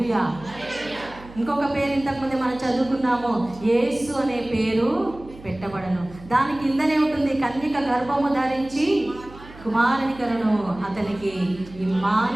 ఇంకొక పేరు ఇంతకుముందే మనం చదువుకున్నాము, యేసు అనే పేరు పెట్టబడను. దాని కిందనే ఉంటుంది, కన్యక గర్భము ధరించి కుమారుని కరును, అతనికి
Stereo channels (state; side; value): noise; right; hum, 19 dB below the sound